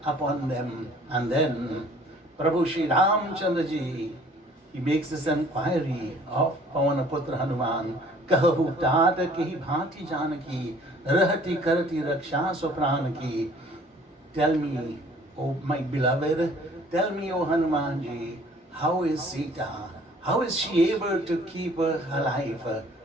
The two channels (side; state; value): both; normal; correlation 0.54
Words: upon them. And then Prabhu Shri Ramchandra Ji, he makes this inquiry of Pavanaputra Hanuman. Kahu tat ki bhati janaki, rahati karati raksha sopran ki. Tell me, O my beloved, tell me, O Hanuman Ji, how is Sita? How is she able to keep her life?